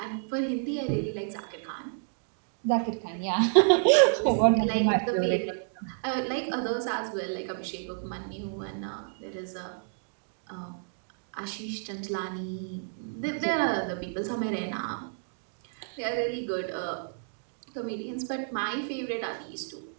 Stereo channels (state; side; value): silent; left; digital silence